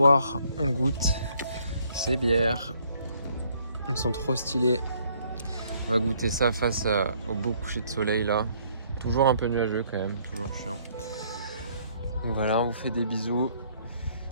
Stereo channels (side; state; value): both; inverted; correlation -0.65